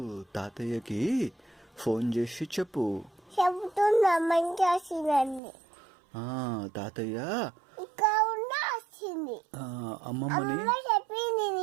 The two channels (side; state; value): left; drops out; at 5.4 s